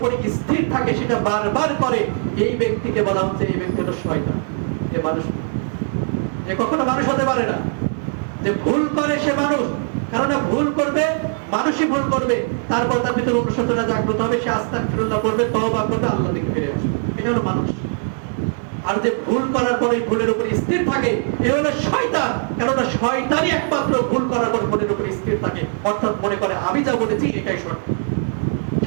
স্থির থাকে, সেটা বারবার করে, এই ব্যক্তিকে বলা হচ্ছে এই ব্যক্তি হলো শয়তান। এ মানুষ, এ কখনো মানুষ হতে পারে না। যে ভুল করে সে মানুষ, কারণ ভুল করবে, মানুষই ভুল করবে, তারপর তার ভিতরে অনুশোচনা জাগ্রত হবে, সে আস্তাগফিরুল্লাহ করবে, তওবা করবে, আল্লাহর দিকে ফিরে আসবে, এটা হলো মানুষ। আর যে ভুল করার পরে ভুলের উপর স্থির থাকে এ হলো শয়তান। কেননা শয়তানই একমাত্র ভুল করার পর ভুলের উপর স্থির থাকে, অর্থাৎ মনে করে আমি যা বলেছি এটাই সঠিক,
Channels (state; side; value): silent; left; 57 dB below the other